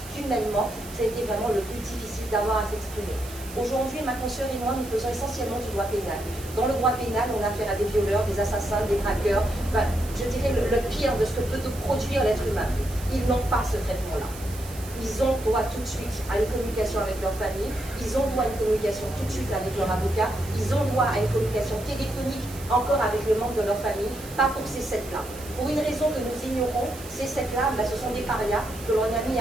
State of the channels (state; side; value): noise; right; hiss, 16 dB below the sound